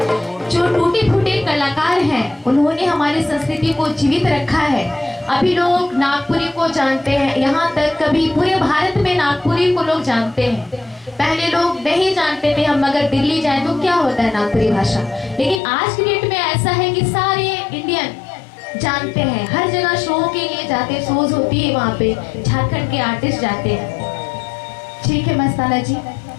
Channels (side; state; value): right; drops out; at 15.6 s